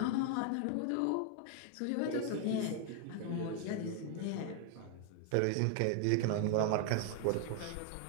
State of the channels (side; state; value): both; different; correlation 0.00